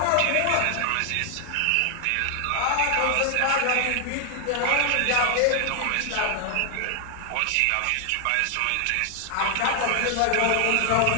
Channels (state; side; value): different; both; correlation 0.00